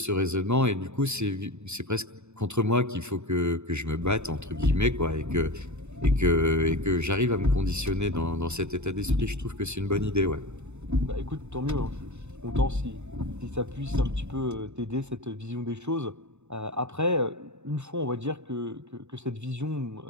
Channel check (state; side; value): late; left; 0.82 ms